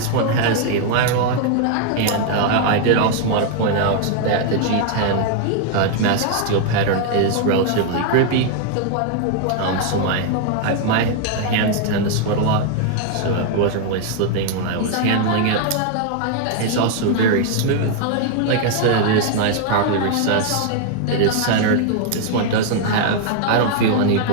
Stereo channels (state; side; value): different; both; correlation 0.00